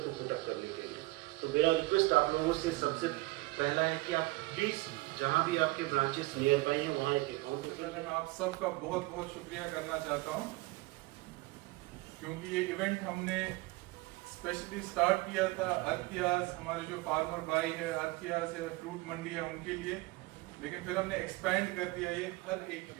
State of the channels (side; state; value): left; quieter; 21.9 dB